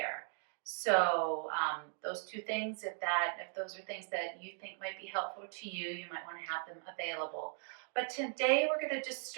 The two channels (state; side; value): silent; left; 52 dB below the other